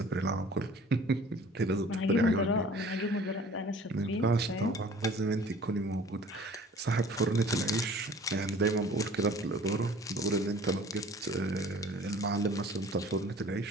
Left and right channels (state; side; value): normal; both; correlation 0.49